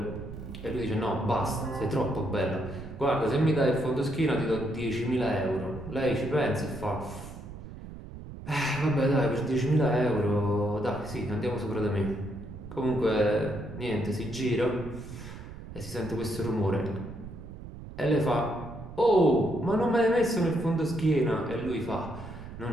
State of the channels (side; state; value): right; noise; rumble, 12 dB below the sound